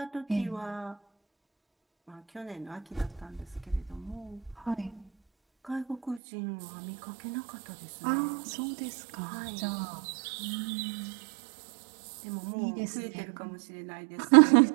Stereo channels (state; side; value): drops out; left; at 6.2 s